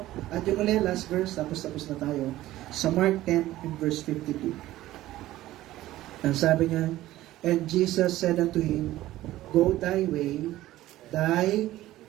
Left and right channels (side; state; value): left; quieter; 15.4 dB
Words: At yung ulit, last verse, tapos na tayo. Sa Mark 10 and verse 52. Ang sabi niya, and Jesus said unto him, go thy way, thy